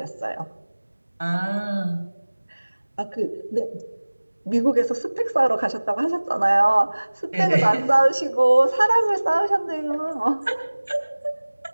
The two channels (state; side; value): inverted; both; correlation -1.00